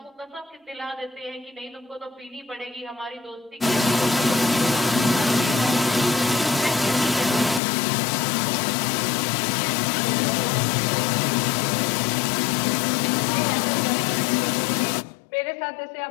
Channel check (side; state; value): right; drops out; at 7.6 s